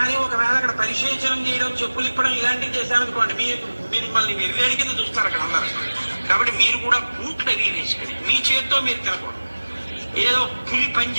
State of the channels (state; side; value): inverted; both; correlation -1.00